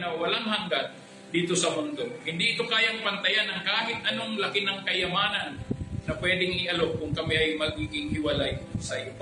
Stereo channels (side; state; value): both; identical; correlation 1.00